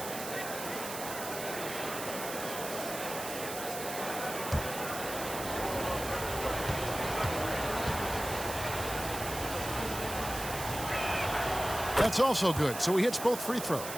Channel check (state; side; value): noise; right; hiss, 8 dB below the sound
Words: That's also good. So he hits both free throws.